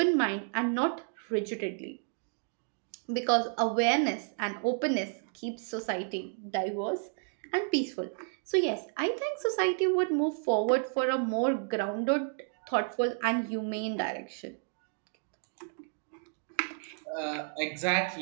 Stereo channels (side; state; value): left; silent; 57 dB below the other